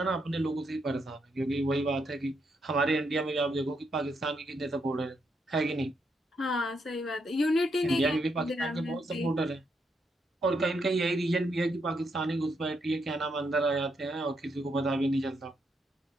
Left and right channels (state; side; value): normal; both; correlation 0.78